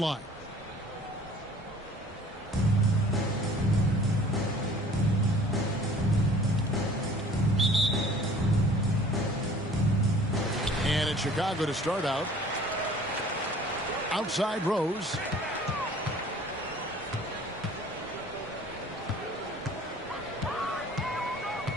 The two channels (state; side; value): normal; both; correlation 0.50